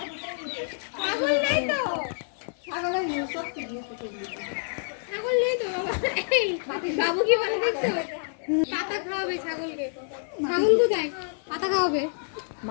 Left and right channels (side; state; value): right; silent; 55 dB below the other